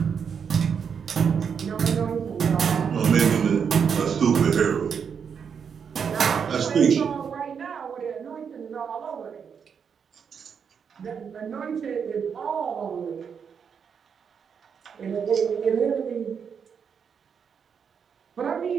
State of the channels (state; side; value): quieter; left; 6.8 dB